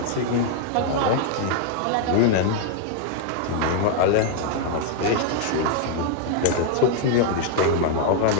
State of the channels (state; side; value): different; both; correlation 0.00